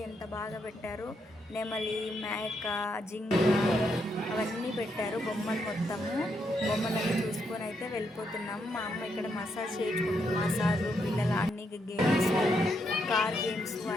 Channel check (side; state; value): both; normal; correlation 0.78